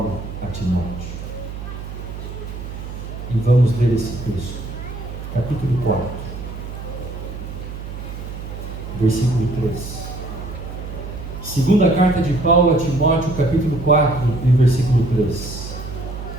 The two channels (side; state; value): right; noise; hum, 9 dB below the sound